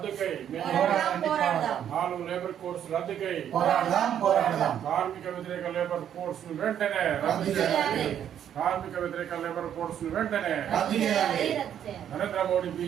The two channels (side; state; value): left; quieter; 9.7 dB